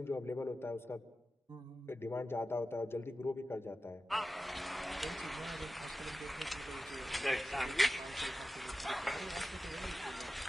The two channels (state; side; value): normal; both; correlation 0.93